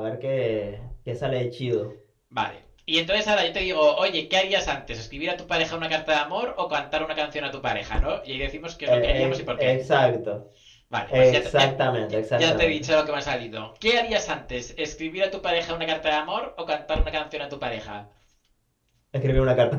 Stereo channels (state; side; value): identical; both; correlation 1.00